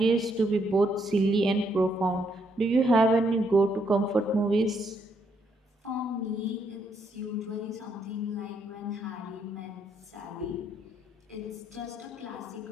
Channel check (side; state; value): both; normal; correlation 0.74